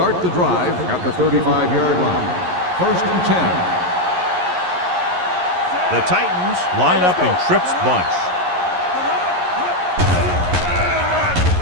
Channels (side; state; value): left; late; 11 ms